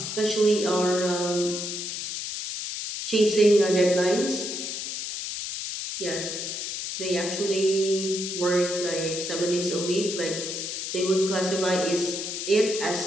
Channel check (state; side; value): noise; left; hiss, 5 dB below the sound